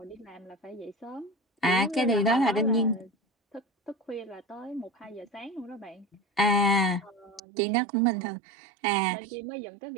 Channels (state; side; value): drops out; left; at 7.4 s